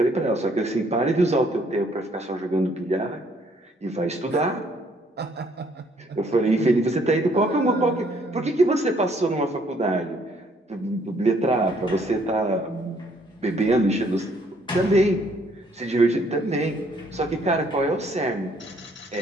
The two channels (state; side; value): normal; both; correlation 0.65